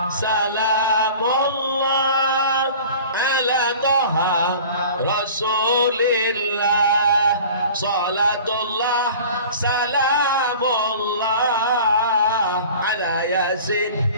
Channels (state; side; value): inverted; both; correlation -0.42